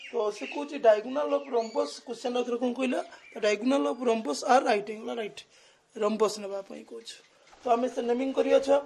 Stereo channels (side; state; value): both; identical; correlation 1.00